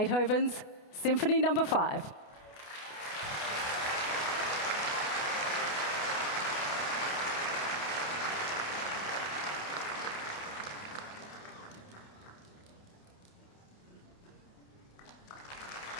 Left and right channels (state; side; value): late; right; 28 ms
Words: Symphony No. 5.